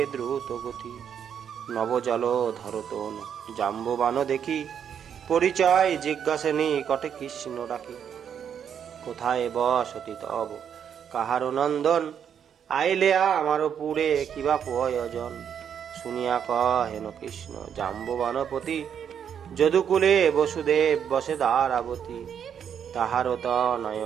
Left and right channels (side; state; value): left; quieter; 8.3 dB